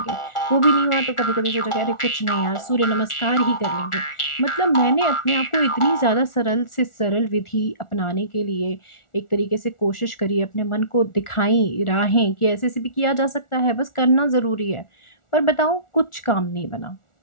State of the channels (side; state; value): right; late; 1.4 ms